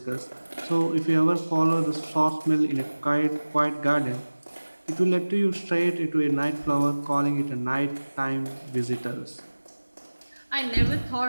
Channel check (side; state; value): both; inverted; correlation -1.00